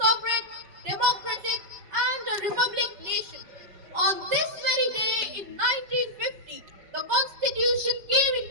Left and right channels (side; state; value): left; late; 5.0 ms